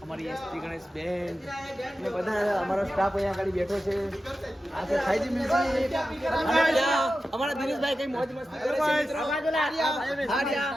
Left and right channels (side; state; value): both; normal; correlation 0.92